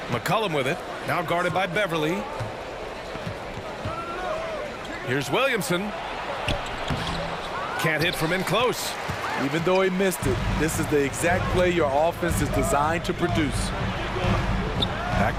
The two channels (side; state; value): both; identical; correlation 1.00